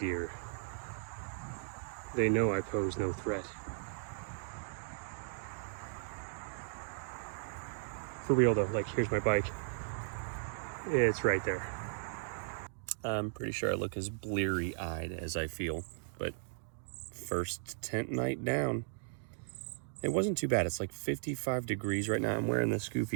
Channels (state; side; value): silent; left; digital silence